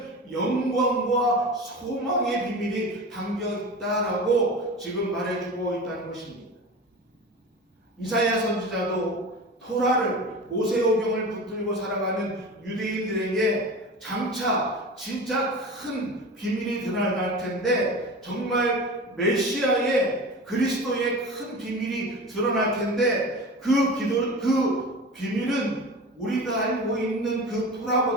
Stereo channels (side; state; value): both; normal; correlation 0.32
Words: 영광과 소망의 비밀이 담겨 있다라고 지금 말해주고 있다는 것입니다. 이사야 선지자도 토라를 모세오경을 붙들고 살아가는 유대인들에게 장차 진짜 큰 비밀이 드러날 텐데 정말 메시아의 그리스도의 큰 비밀이 드러날 텐데 그 비밀은 우리가 알고 있는 그